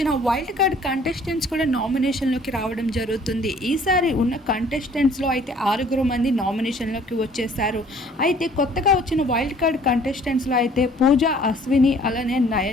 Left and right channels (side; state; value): both; normal; correlation 0.56